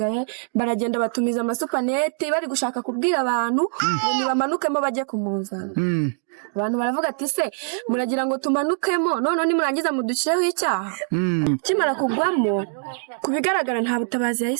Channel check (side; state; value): left; silent; digital silence